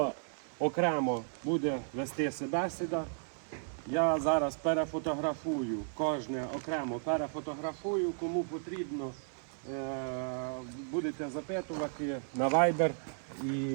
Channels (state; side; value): silent; left; 55 dB below the other